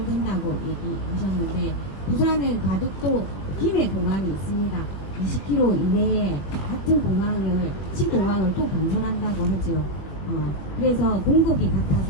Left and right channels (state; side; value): late; right; 21 ms